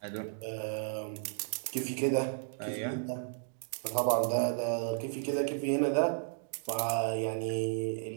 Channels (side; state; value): left; silent; digital silence